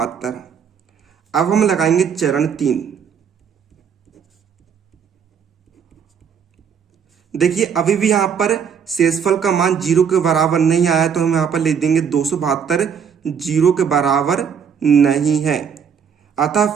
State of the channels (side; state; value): left; quieter; 7.2 dB